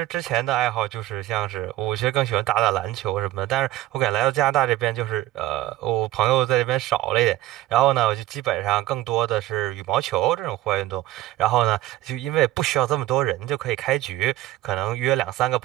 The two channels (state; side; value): quieter; left; 15.2 dB